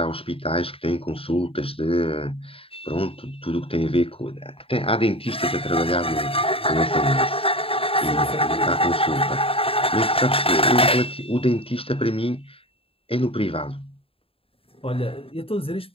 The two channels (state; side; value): late; right; 0.27 ms